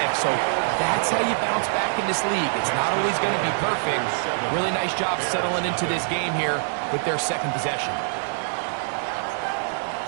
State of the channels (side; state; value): left; silent; digital silence